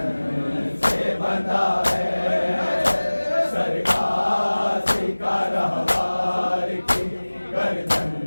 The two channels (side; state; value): both; inverted; correlation -1.00